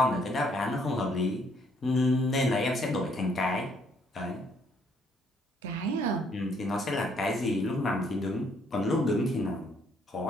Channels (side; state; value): both; normal; correlation 0.67